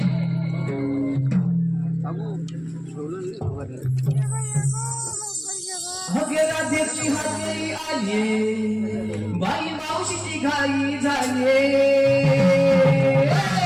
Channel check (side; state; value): both; identical; correlation 1.00